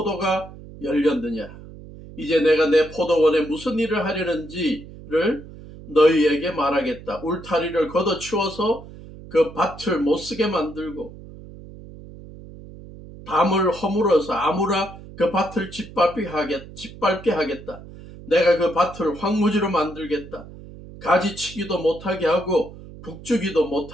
열렸느냐? 이제 내가 내 포도원에 무슨 일을 하려는지를 너희에게 말하겠다. 울타리를 걷어치워서 그 밭을 못쓰게 만들고 담을 허물어서 아무라 그 밭을 짓밟게 하겠다. 내가 그 밭을 황무지로 만들겠다. 가지치기도 못하게 하고 북주기도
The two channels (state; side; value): noise; right; hum, 16 dB below the sound